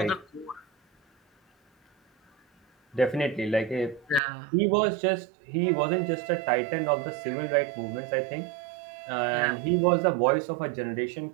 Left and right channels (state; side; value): drops out; left; at 4.2 s